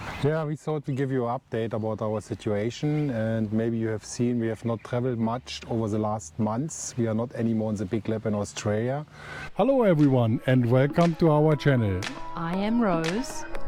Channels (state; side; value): identical; both; correlation 1.00